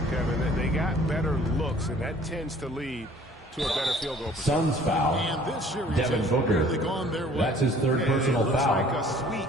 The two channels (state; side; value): normal; both; correlation 0.53